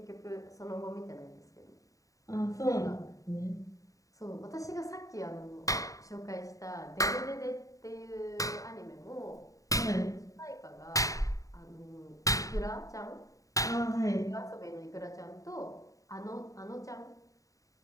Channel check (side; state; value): right; late; 0.16 ms